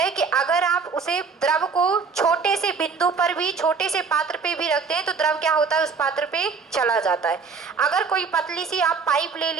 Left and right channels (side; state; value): left; quieter; 5.2 dB